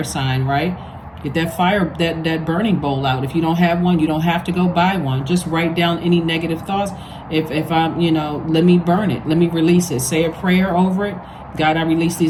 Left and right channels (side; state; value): both; identical; correlation 1.00